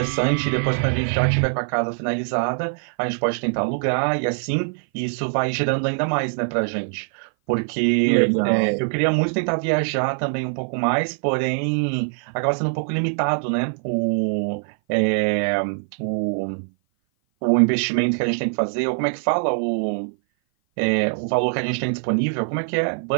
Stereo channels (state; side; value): silent; left; 57 dB below the other